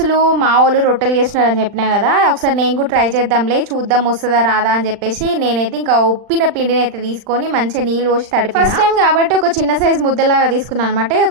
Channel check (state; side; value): late; left; 39 ms